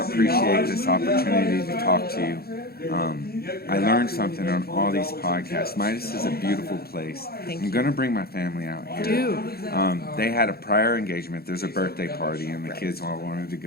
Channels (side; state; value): right; late; 0.45 ms